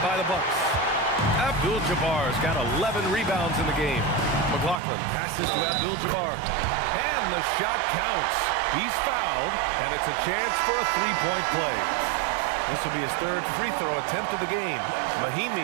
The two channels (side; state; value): left; drops out; at 4.8 s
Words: by the Bucks. Abdul-Jabbar's got 11 rebounds in the game. McLaughlin passes to Abdul-Jabbar. And the shot counts. He's fouled, and it's a chance for a 3-point play. This will be his 3rd free throw attempt of the game.